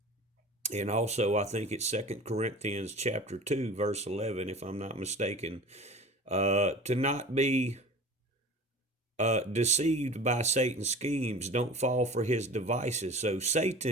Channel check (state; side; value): normal; both; correlation 0.39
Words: And also, I think it's 2 Corinthians chapter 2, verse 11, if I'm not mistaken, to not be deceived by Satan's schemes. Don't fall for his devices. So